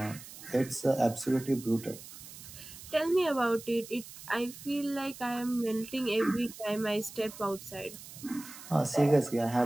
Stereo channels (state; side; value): noise; right; hiss, 15 dB below the sound